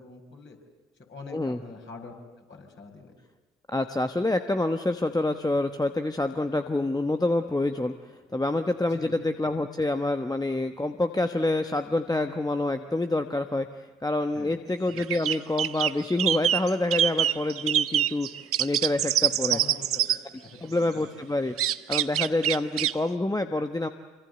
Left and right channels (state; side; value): normal; both; correlation 0.69